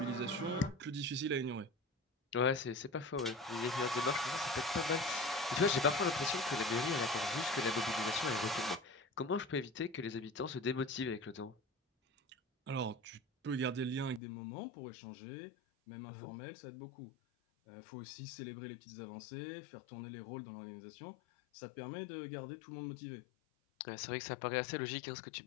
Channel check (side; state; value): right; drops out; at 14.2 s